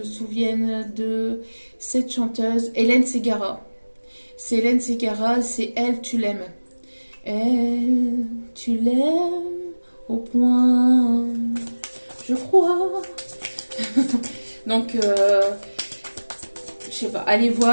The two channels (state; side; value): inverted; both; correlation -1.00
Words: souvienne de cette chanteuse, Hélène Ségara. C'est Hélène Ségara, c'est Elle, tu l'aimes. Elle, tu l'aimes au point, je crois. Donc, je sais pas, allez